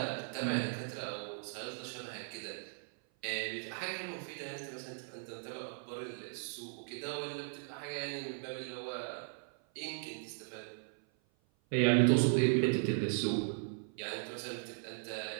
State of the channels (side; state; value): left; silent; 53 dB below the other